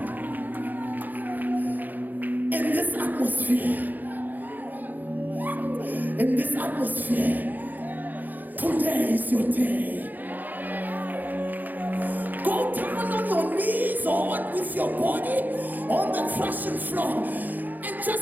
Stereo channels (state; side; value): late; left; 0.085 ms